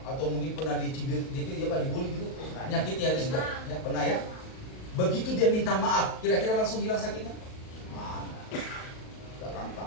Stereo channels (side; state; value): right; late; 38 ms